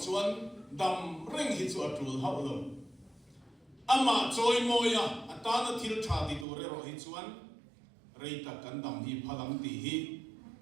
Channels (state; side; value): drops out; left; at 6.5 s